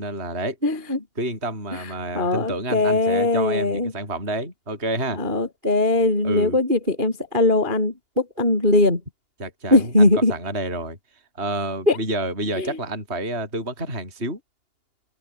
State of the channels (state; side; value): late; left; 2.8 ms